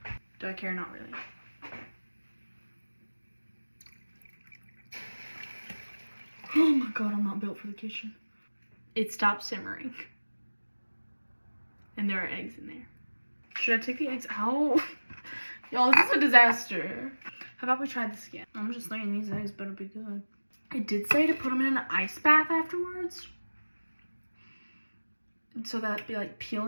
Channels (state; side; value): inverted; both; correlation -1.00